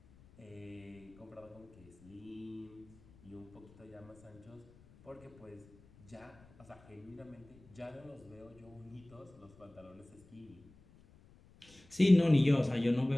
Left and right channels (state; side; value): noise; left; rumble, 25 dB below the sound